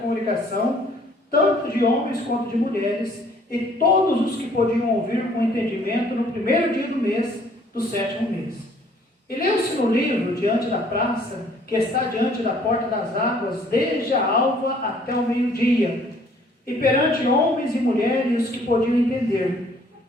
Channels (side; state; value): both; normal; correlation 0.59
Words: tanto de homens quanto de mulheres, e todos os que podiam ouvir com entendimento no primeiro dia do mês, do 7º mês. E leu-se no livro, diante da praça, que está diante da porta das águas, desde a alva até o meio-dia, e perante homens e mulheres que podiam entender.